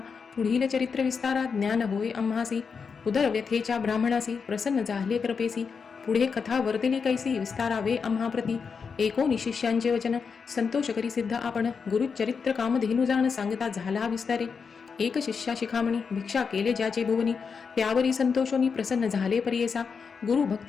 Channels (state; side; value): quieter; right; 5.7 dB